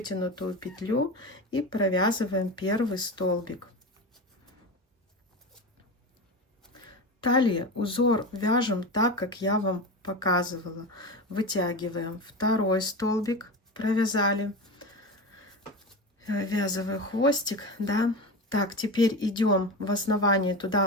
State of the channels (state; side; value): normal; both; correlation 0.25